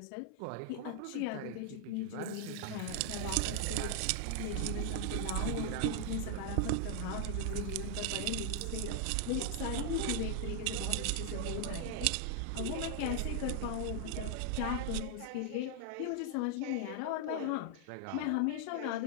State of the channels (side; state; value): both; different; correlation 0.00